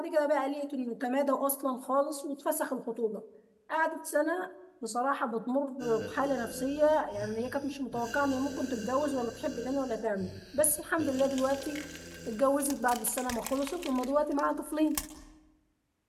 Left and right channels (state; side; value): identical; both; correlation 1.00